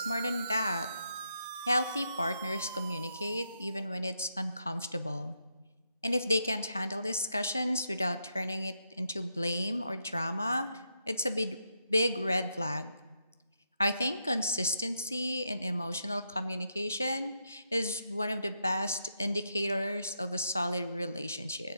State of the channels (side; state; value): both; inverted; correlation -0.81